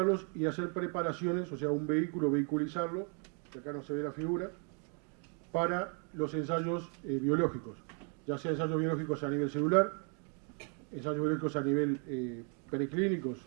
y hacer preparaciones, o sea, un vehículo, vehiculizarlo, que acá no se ve la figura, para los ensayos biológicos, ya sea ensayos biológicos a nivel celular, ensayos biológicos a nivel preclínicos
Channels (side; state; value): left; quieter; 39.8 dB